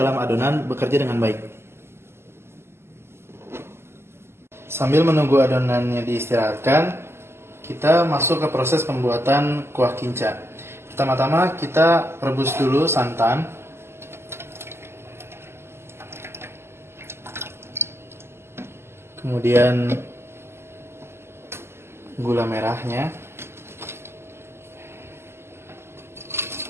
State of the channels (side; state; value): left; late; 0.12 ms